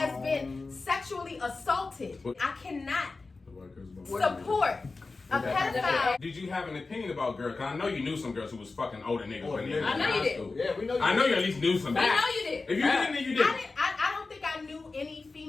been sexually assaulted, I cannot support a pedophile. Did you have an opinion about girls? Because I know you knew some girls who was fucking older niggas when they were I know in you high did. school. Yeah, we know you I know did. you at least knew some. We know you did. If you didn't, then you did. I don't think I knew any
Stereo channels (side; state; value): right; quieter; 3.8 dB